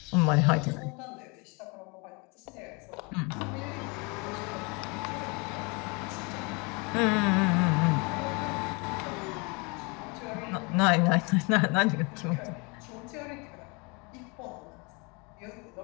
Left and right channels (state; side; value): quieter; right; 30.1 dB